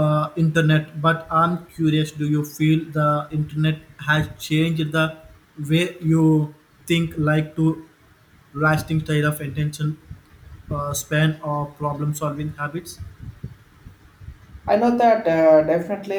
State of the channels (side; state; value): both; identical; correlation 1.00